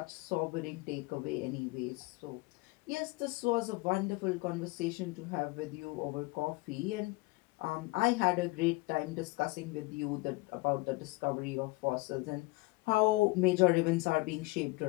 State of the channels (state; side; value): quieter; right; 23.2 dB